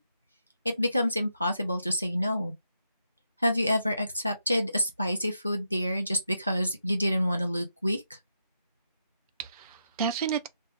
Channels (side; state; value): both; inverted; correlation -0.83